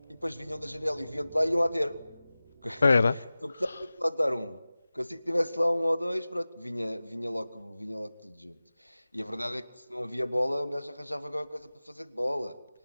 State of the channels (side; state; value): both; inverted; correlation -0.97